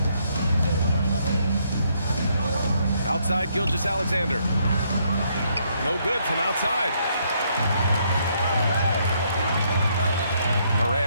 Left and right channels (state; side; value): inverted; both; correlation -0.72